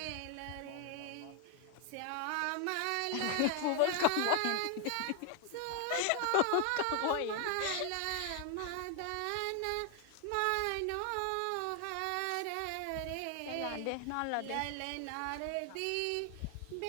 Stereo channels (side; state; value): both; different; correlation 0.00